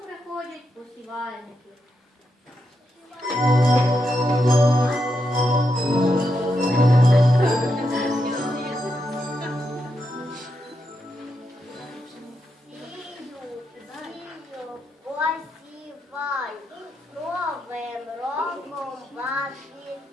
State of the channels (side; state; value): both; normal; correlation 0.84